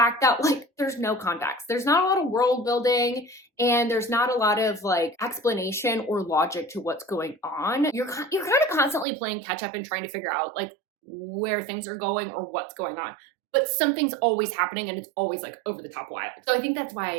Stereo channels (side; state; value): left; drops out; at 9.1 s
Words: that like there's no context. There's not a lot of world building and there's not a lot of like explanation or logic to what's going on. You're kind of constantly playing catch up and trying to figure out like where things are going or what's going on. But something's always happening and it's always like over the top wild. So I think that's